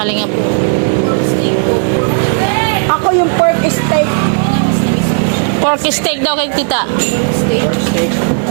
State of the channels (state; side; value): silent; left; digital silence